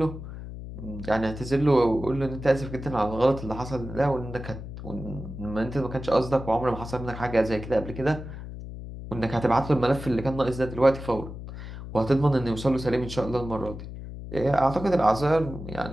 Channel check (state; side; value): noise; left; hum, 10 dB below the sound